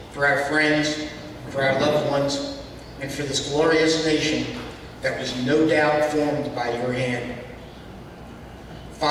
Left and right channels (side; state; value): both; identical; correlation 1.00